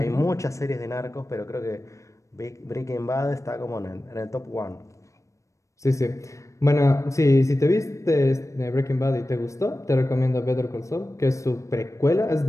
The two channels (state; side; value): late; right; 0.15 ms